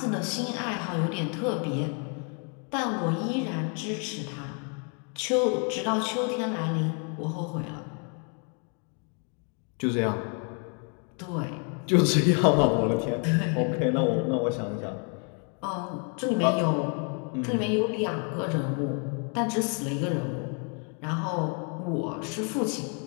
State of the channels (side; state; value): right; quieter; 39.3 dB